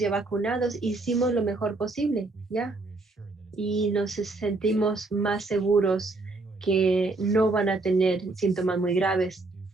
vacunados, hicimos lo mejor posible, ¿ya? Y nos sentimos más seguros que no van a tener síntomas muy graves.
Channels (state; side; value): quieter; left; 3.3 dB